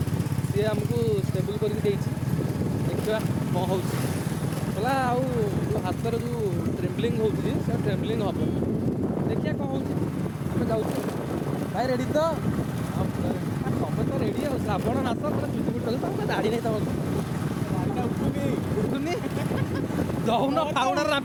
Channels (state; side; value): identical; both; correlation 1.00